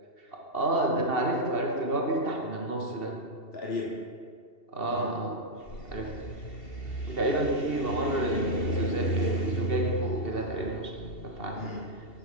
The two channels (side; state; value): right; late; 2.7 ms